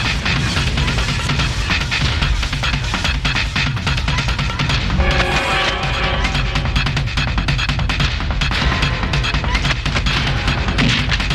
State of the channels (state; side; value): identical; both; correlation 1.00